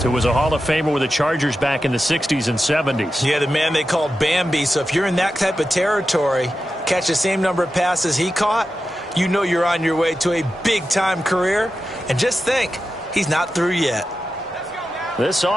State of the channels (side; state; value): both; normal; correlation 0.91